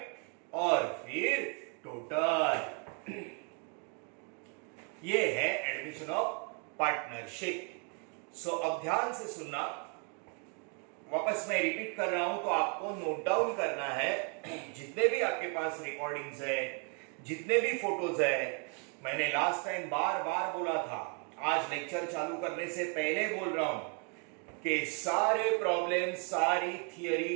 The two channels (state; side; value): quieter; left; 38.6 dB